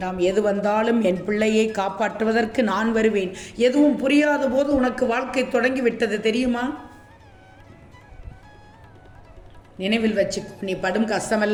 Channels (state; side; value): identical; both; correlation 1.00